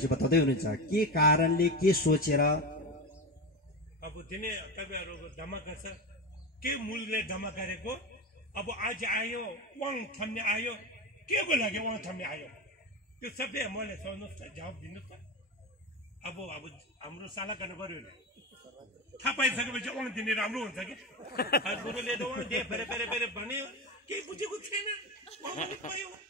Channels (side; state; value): both; normal; correlation 0.21